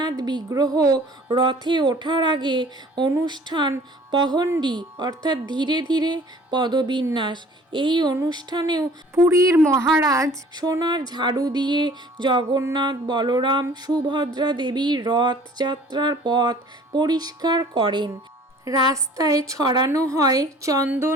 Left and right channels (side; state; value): both; normal; correlation 0.51